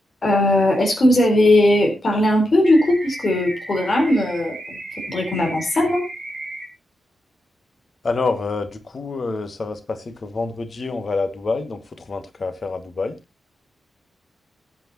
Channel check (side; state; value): both; normal; correlation 0.86